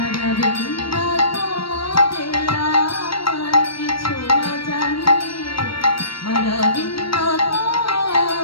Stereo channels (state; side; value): late; right; 0.74 ms